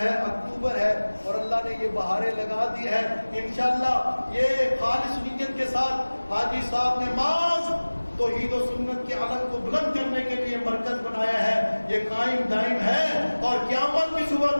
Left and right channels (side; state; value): both; inverted; correlation -1.00